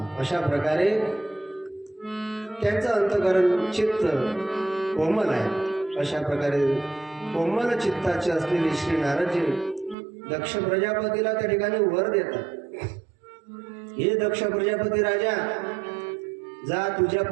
अशा प्रकारे त्यांचं अंतकरण चित्त कोमल आहे. अशा प्रकारे कोमल चित्ताचे असलेले श्री नारदजी दक्ष प्रजापतीला त्या ठिकाणी वर देतात. हे दक्ष प्रजापती राजा, जा तुझ्या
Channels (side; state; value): left; drops out; at 10.0 s